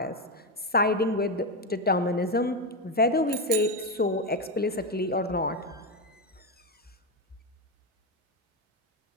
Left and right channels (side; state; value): both; normal; correlation 0.11